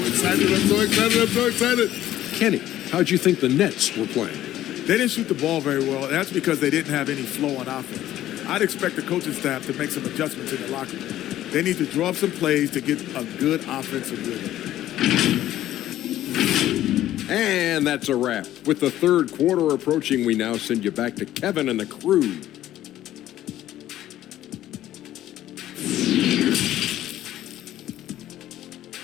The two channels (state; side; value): quieter; right; 13.2 dB